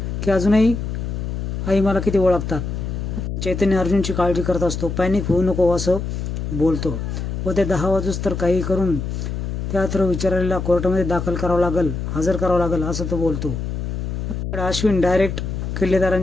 की अजूनही आई मला किती ओळखतात. चैतन्य अर्जुनची काळजी करत असतो. पॅनिक होऊ नको असं बोलतो व ते 10 वाजूस तर काही करून त्या विचारायला कोर्टामध्ये दाखल करावं लागल, हजर करावं लागल असं तो बोलतो. अश्विन डायरेक्ट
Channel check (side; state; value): left; noise; hum, 4 dB below the sound